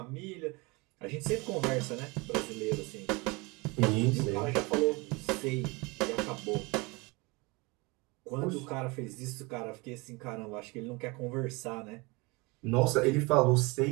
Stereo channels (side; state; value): left; quieter; 26.2 dB